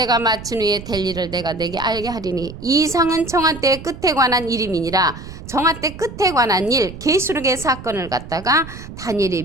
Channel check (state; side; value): noise; right; rumble, 13 dB below the sound